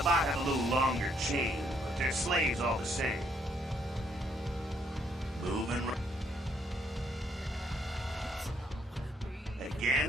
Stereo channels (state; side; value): normal; both; correlation 0.70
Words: have a little longer chain, but they're slaves all the same. Moving right.